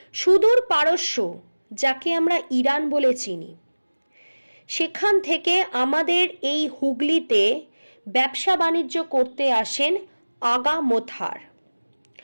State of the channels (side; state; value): both; inverted; correlation -1.00